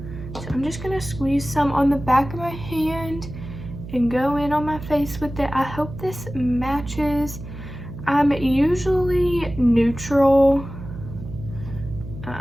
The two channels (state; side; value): noise; right; hum, 11 dB below the sound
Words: So I'm just going to squeeze some on the back of my hand and go in on my face with it. I hope this matches. I'm usually neutral.